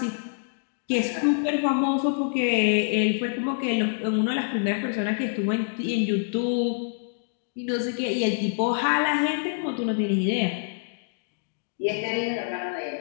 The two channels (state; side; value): silent; right; digital silence